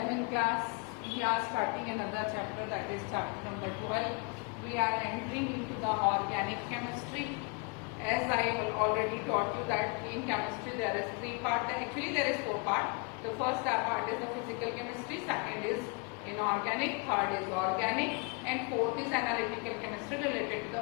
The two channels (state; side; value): quieter; right; 32.5 dB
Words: class, we are starting another chapter, that is chapter number 12. We are entering into the organic chemistry. As I already taught you that in chemistry there is 3 parts, actually there is 4 parts. The first part is the physical chemistry, second is inorganic, third is organic, and fourth is analytical chemistry related to